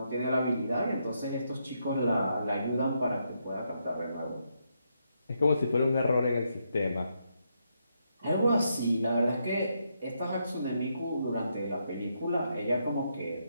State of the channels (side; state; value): both; inverted; correlation -0.79